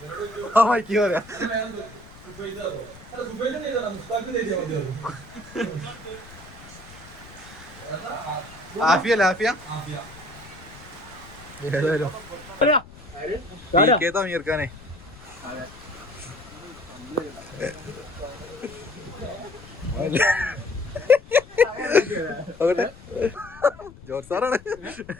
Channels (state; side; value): noise; left; rumble, 19 dB below the sound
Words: മൈക്ക് പറയാ ആഫിയ ഏതായാലും തമീർക്കാനെ ജോർജ് സാറാണ്